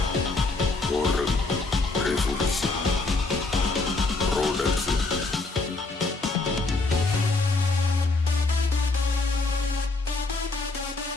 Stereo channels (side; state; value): right; quieter; 3.5 dB